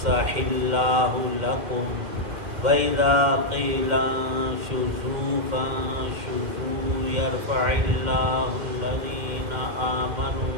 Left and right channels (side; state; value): left; late; 2.1 ms